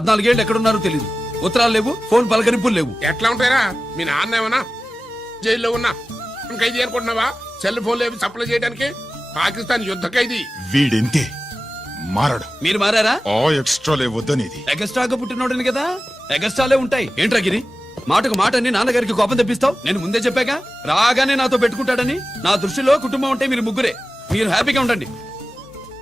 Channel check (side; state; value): both; normal; correlation 0.95